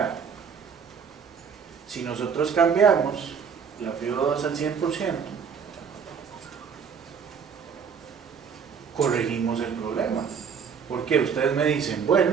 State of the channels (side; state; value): left; quieter; 6.5 dB